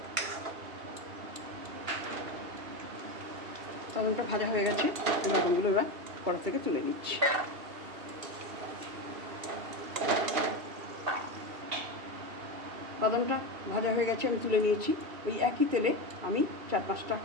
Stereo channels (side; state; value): left; late; 2.7 ms